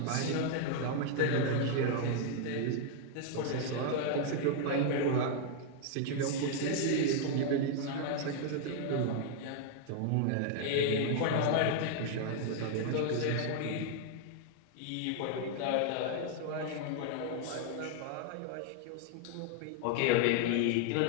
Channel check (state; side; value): different; both; correlation 0.00